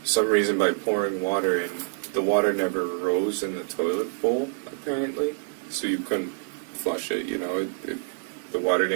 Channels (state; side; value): silent; left; 61 dB below the other